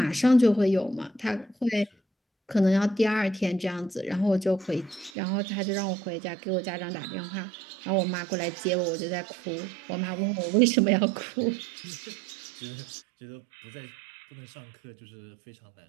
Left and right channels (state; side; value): drops out; left; at 5.1 s